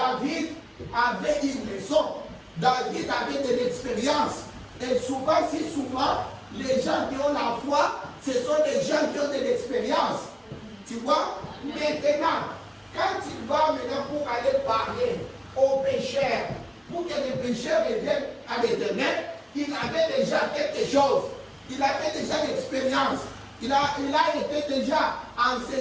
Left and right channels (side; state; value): both; identical; correlation 1.00